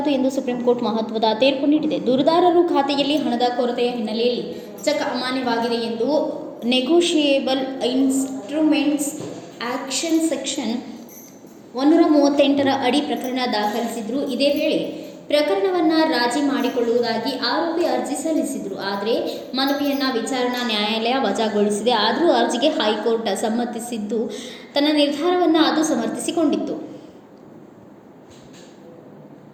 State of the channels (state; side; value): identical; both; correlation 1.00